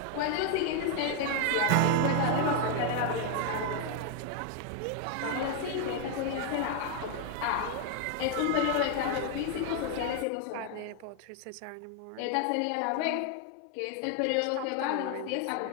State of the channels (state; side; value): different; both; correlation 0.00